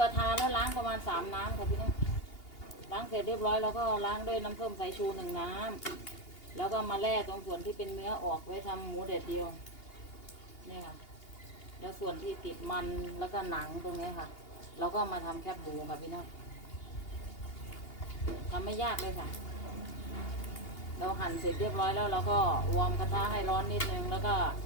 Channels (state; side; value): late; right; 2.8 ms